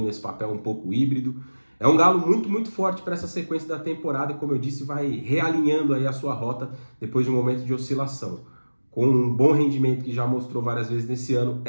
nesse papel um pouco híbrido. É um Galo muito, muito forte para essa sequência da temporada e, como eu disse, vai realinhando aí a sua rota depois de um momento de oscilação. Com um bom rendimento que já mostrou várias vezes nesse ano,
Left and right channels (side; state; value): both; inverted; correlation -1.00